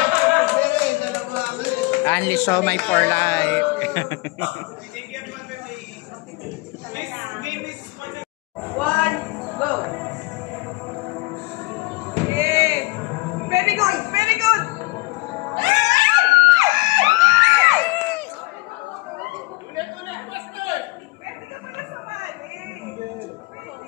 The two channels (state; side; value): quieter; right; 22.9 dB